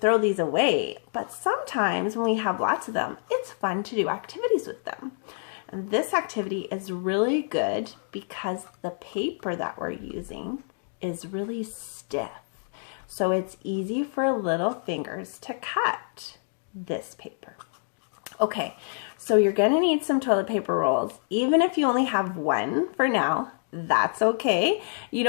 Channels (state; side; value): silent; right; digital silence